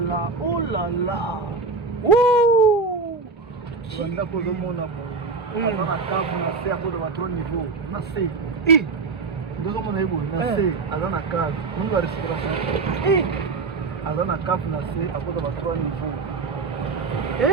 oh là là. Ouh! Wanda ko zomona mo. Ana kavu na se akodo ba trop niveau. Na se. Ndozo mona ibo na se azana kavu. Mungu respiration. Azana kavu na se akodo ba trop niveau.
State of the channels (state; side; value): quieter; left; 4.3 dB